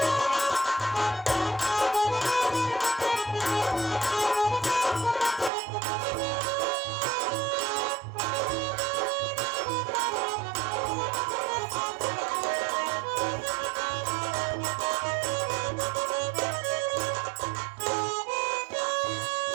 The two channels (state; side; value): drops out; left; at 5.5 s